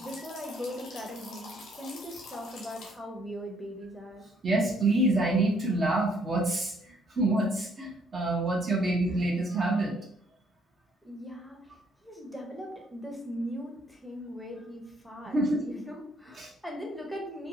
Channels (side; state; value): both; normal; correlation 0.67